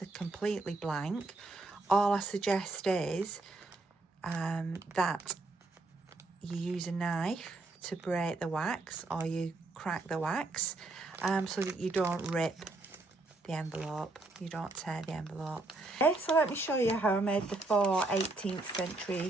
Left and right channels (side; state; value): left; quieter; 3.0 dB